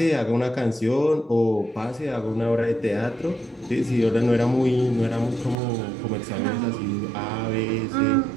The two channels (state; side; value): drops out; left; at 5.6 s